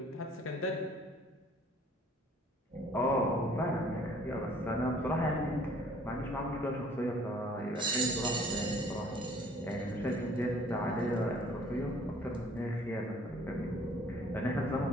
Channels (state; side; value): normal; both; correlation 0.56